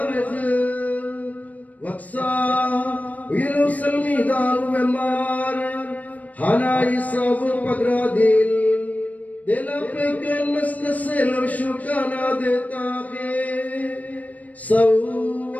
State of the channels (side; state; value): right; late; 0.073 ms